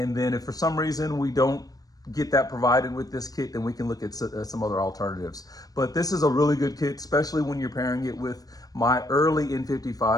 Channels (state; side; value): late; right; 0.18 ms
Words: then if for some reason we don't get that provided with this kit, then we can look at some other alternatives. But this is a really good kit, especially when you're pairing it with my early